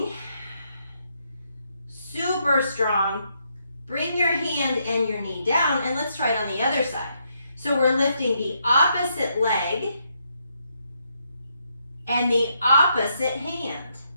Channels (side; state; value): both; inverted; correlation -0.77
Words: Super strong. Bring your hand and your knee down, and let's try it on the other side. So we're lifting the opposite leg and the opposite hand.